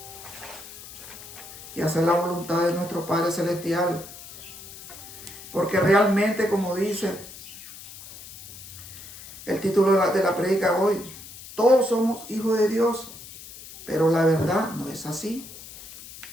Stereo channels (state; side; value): noise; left; hiss, 15 dB below the sound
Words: que hacer la voluntad de nuestro Padre Celestial. Porque realmente, como dice el título de la prédica hoy, todos somos hijos de Dios. Pero la verdad no es así.